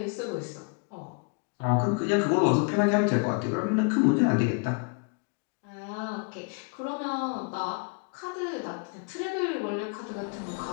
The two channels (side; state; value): right; quieter; 36.7 dB